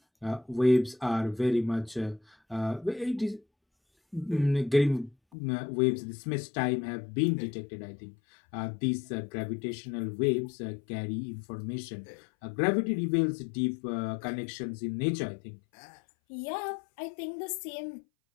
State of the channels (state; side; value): drops out; right; at 5.2 s